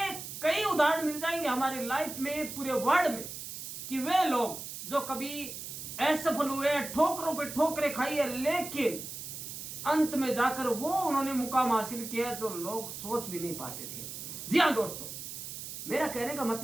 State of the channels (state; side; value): noise; right; hiss, 9 dB below the sound